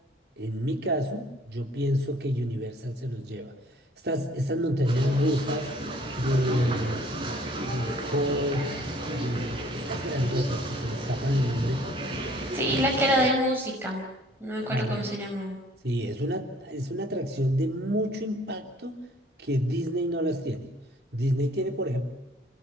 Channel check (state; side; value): normal; both; correlation 0.57